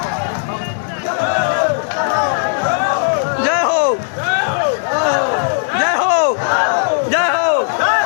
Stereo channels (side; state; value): right; silent; 64 dB below the other